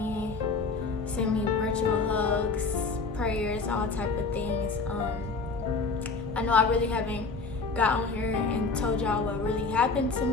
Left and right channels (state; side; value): quieter; right; 4.1 dB